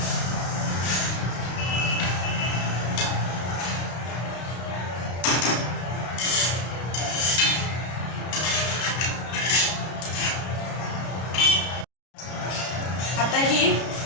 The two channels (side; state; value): right; late; 33 ms